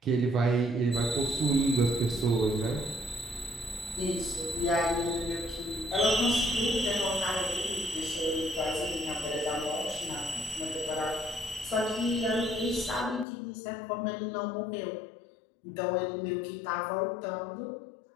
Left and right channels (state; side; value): drops out; right; at 13.2 s